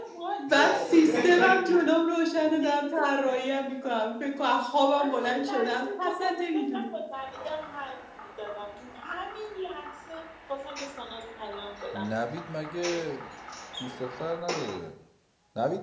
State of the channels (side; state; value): both; identical; correlation 1.00